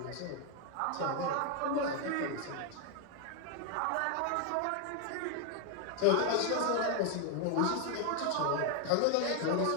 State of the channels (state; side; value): different; both; correlation 0.01